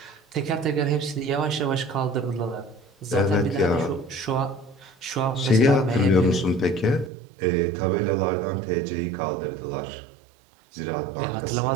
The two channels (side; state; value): left; drops out; at 7.1 s